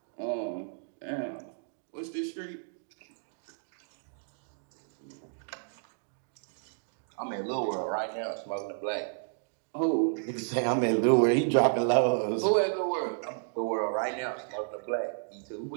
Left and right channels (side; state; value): left; silent; digital silence